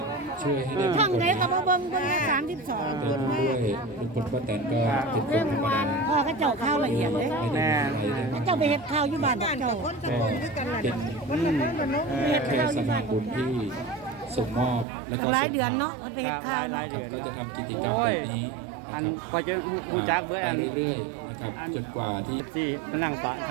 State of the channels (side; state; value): left; drops out; at 14.9 s